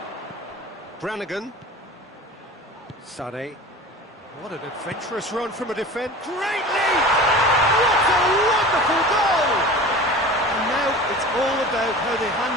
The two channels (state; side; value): normal; both; correlation 0.37